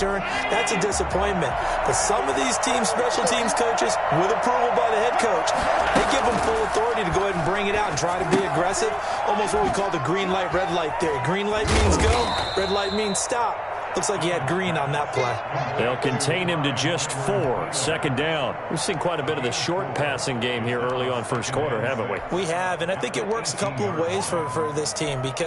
that's a disappointment. But some of these teams, special teams coaches, with approval by the head coach, they give them full authority to go ahead and bring it out and try to be aggressive. Almost what we call the green light, red light theory. Green light means go, red light means stop. Looks like he had green on that play. They'll contain him to just 4. 2nd down. We've seen quite a bit of the short passing game here early on first quarter, haven't we? We have, and I think it works a couple of ways for this team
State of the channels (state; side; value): identical; both; correlation 1.00